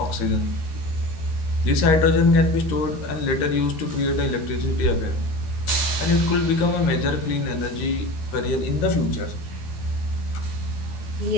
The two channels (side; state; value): right; late; 12 ms